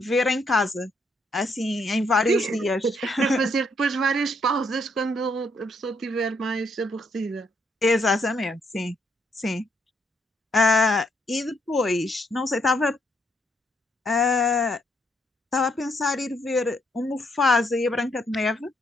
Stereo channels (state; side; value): normal; both; correlation 0.74